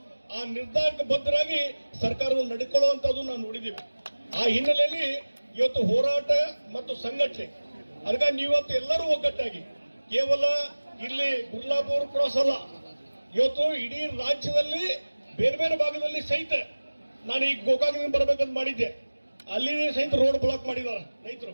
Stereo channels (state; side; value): inverted; both; correlation -1.00